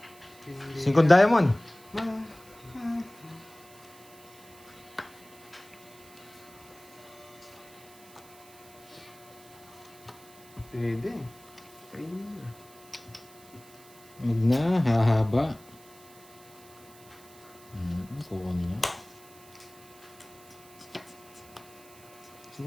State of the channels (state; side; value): noise; right; hiss, 22 dB below the sound